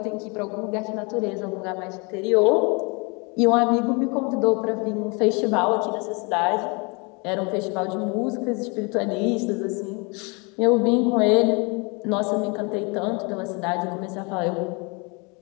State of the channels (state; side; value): quieter; right; 30.8 dB